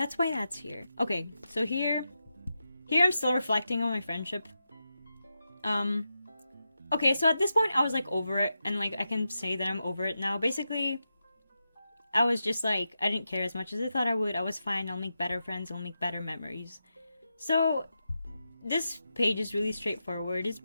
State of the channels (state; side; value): inverted; both; correlation -0.88